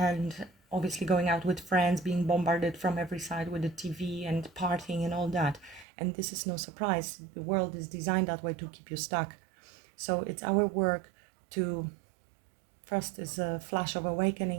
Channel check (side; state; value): left; drops out; at 5.9 s